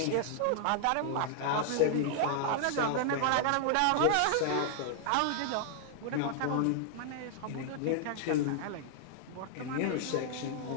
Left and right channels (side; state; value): both; different; correlation -0.01